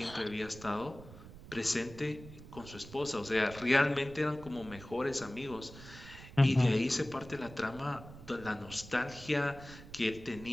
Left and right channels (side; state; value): right; noise; rumble, 16 dB below the sound